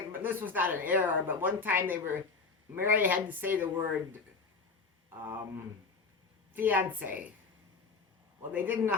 but this was not an error, but one time Mary had to say the word fiancé. Well, they didn't know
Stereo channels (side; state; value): right; quieter; 4.5 dB